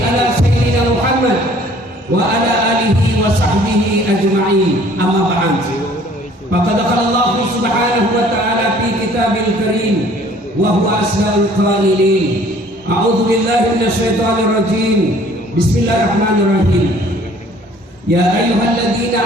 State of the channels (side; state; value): both; normal; correlation 0.55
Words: sayyidina Muhammad wa ala alihi wa sahbihi ajma'in. Amma ba'd. Faqad qala Allah subhanahu wa ta'ala fi kitabil karim wa huwa asdaqul qailin. A'udzu billahi minasyaitonir rajim. Bismillahirrahmanirrahim. Ya ayyuhalladzina